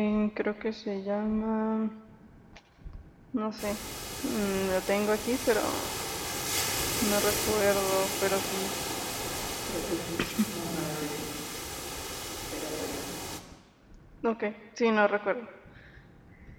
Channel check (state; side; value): identical; both; correlation 1.00